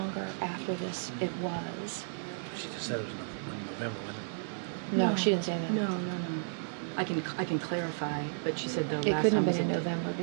after this it was. She just said it was in November, wasn't it? No, she didn't say that. No. I can clarify, but she said the It last couldn't time have been in was November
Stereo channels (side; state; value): left; silent; digital silence